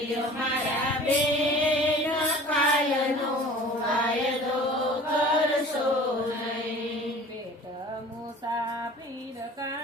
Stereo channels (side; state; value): both; normal; correlation 0.44